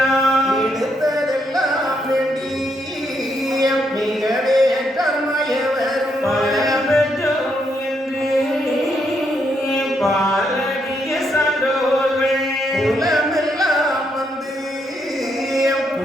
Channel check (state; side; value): normal; both; correlation 0.77